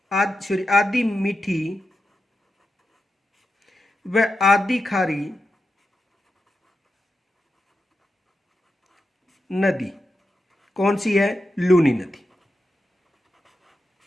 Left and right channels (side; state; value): both; normal; correlation 0.88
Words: आधी मीठी व आधी खारी नदी कौन सी है? लूनी नदी।